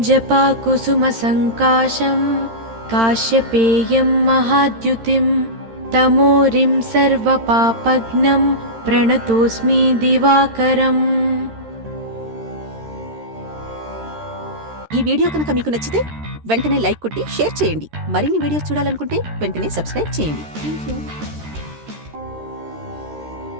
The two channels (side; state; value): left; late; 13 ms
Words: जपाकुसुमसङ्काशं काश्यपेयं महाद्युतिं तमोरिं सर्वपापघ्नं प्रणतोऽस्मि दिवाकरम्। ఈ వీడియో కనుక మీకు నచ్చితే వెంటనే లైక్ కొట్టి షేర్ చేయండి. మరిన్ని వీడియోస్ చూడాలనుకుంటే వెంటనే సబ్స్క్రైబ్ చేయండి. థాంక్యూ.